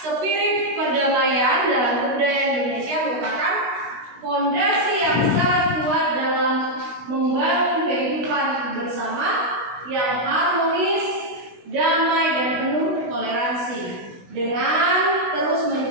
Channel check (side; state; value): left; late; 16 ms